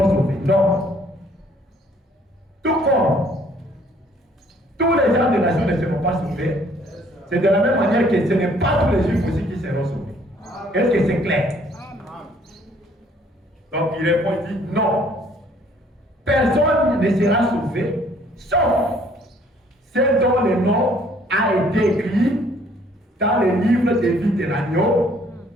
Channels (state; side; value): normal; both; correlation 0.60